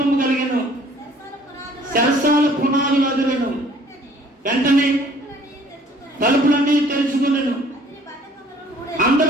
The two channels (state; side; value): normal; both; correlation 0.56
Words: కలిగెను, సరసాల పునాదులు అదిరెను. వెంటనే తలుపులన్నీ తెరుచుకునేను,